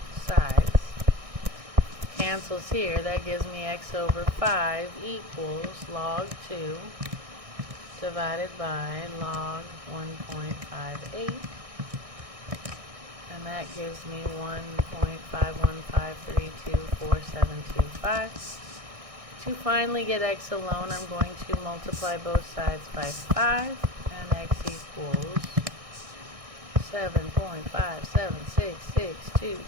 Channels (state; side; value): late; left; 1.6 ms